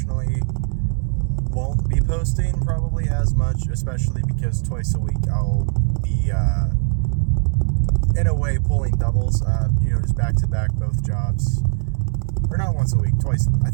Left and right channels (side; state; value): left; quieter; 34.3 dB